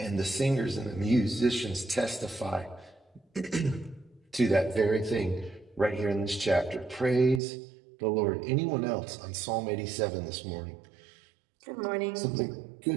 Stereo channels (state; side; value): drops out; left; at 7.4 s